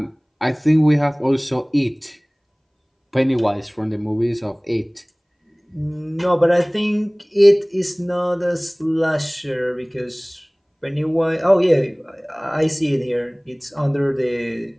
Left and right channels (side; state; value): both; identical; correlation 1.00